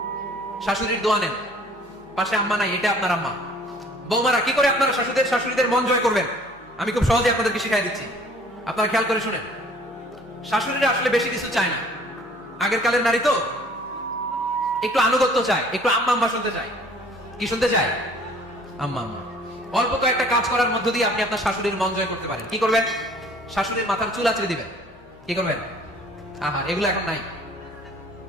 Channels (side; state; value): left; noise; hum, 28 dB below the sound